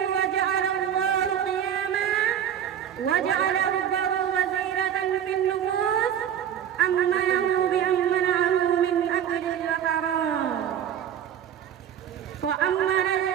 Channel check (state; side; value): quieter; left; 9.4 dB